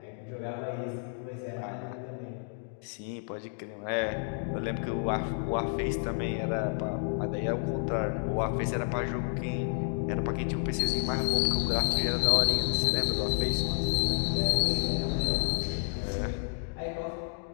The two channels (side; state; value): right; silent; 57 dB below the other